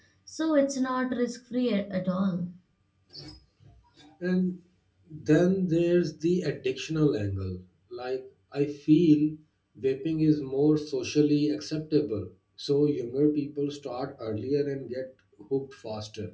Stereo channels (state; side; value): identical; both; correlation 1.00